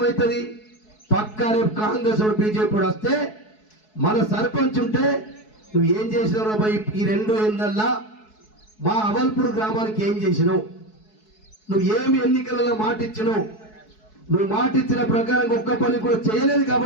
పక్కా రేపు కాంగ్రెస్ బీజేపీ వస్తే మన సర్పంచ్ ఉంటే నువ్వు ఏం చేసినావు బాయ్, ఈ 2 ఏళ్ళల్లో మా అవల్పూర్ గ్రామానికి ఏం చేసినావు, నువ్వు ఏమి ఎన్నికలలో మాట ఇచ్చినావు, నువ్వు మాట ఇచ్చిన ప్రకారం ఒక్క పని కూడా చేయలేదు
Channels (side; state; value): right; late; 4.7 ms